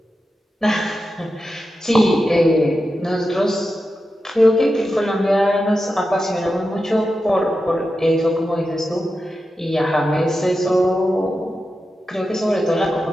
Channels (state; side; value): normal; both; correlation 0.90